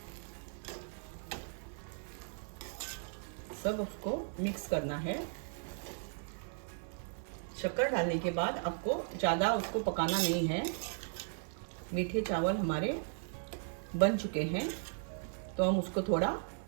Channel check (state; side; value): silent; left; 53 dB below the other